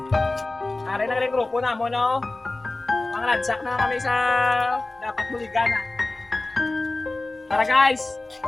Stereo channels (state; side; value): quieter; right; 3.0 dB